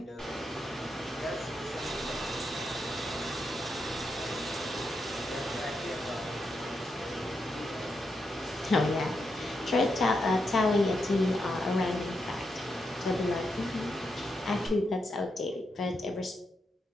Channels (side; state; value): both; normal; correlation 0.84